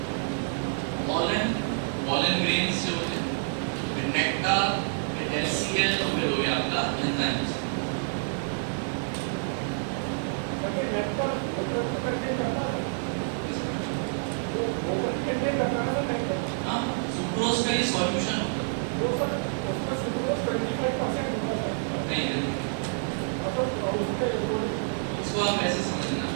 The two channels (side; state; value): left; silent; digital silence